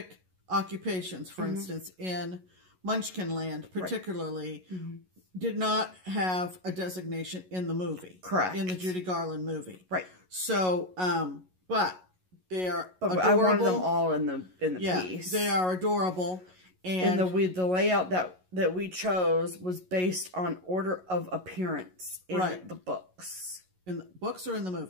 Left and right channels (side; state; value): left; late; 11 ms